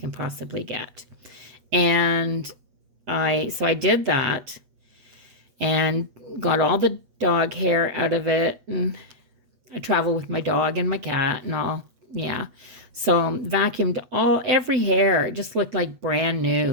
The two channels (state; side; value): late; left; 8.2 ms